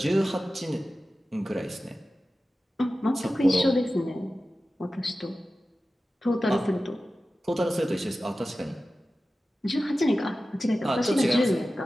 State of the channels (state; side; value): normal; both; correlation 0.94